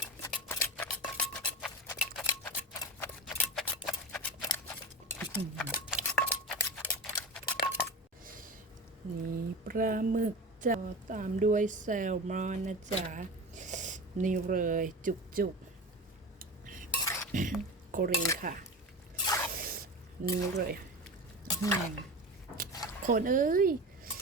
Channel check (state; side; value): normal; both; correlation 0.28